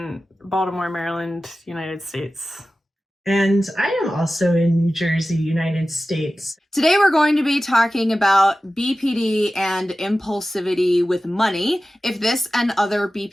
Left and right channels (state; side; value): normal; both; correlation 0.95